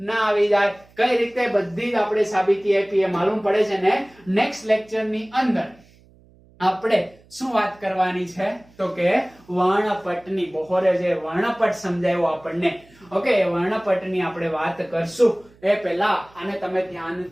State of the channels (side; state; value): right; noise; hum, 28 dB below the sound